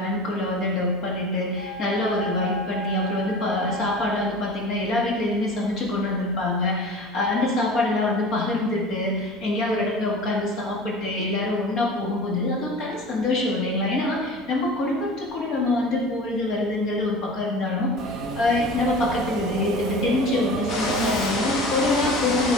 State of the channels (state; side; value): normal; both; correlation 0.37